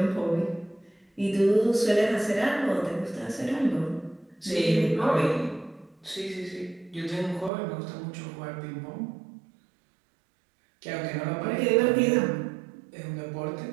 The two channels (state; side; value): drops out; left; at 7.5 s